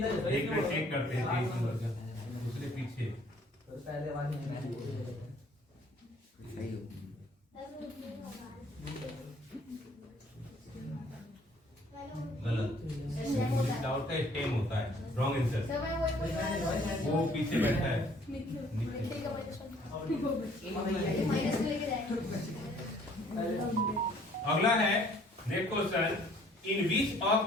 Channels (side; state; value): both; normal; correlation 0.58